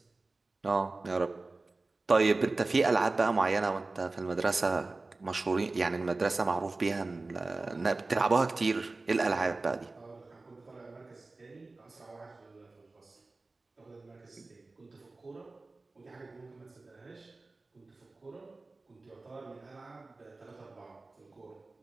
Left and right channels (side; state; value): left; quieter; 3.4 dB